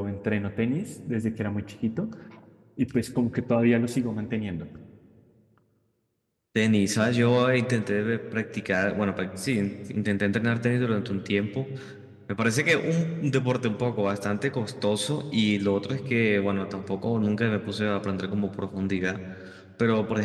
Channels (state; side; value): identical; both; correlation 1.00